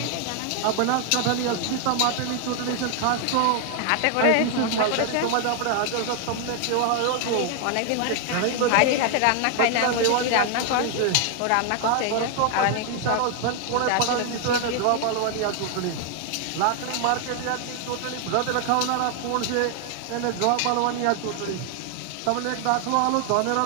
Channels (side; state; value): both; different; correlation 0.00